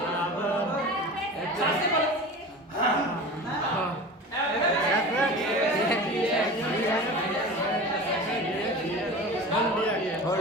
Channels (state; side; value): normal; both; correlation 0.34